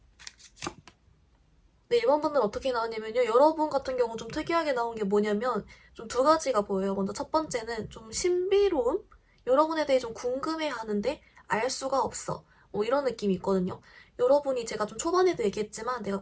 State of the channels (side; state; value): both; identical; correlation 1.00